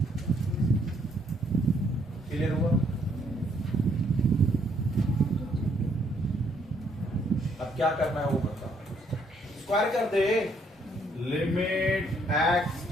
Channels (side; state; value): both; normal; correlation 0.69